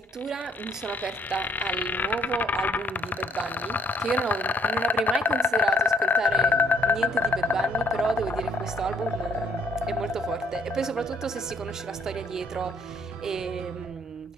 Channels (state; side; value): normal; both; correlation 0.65